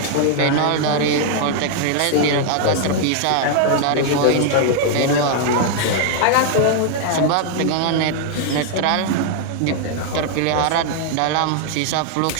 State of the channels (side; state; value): both; different; correlation 0.00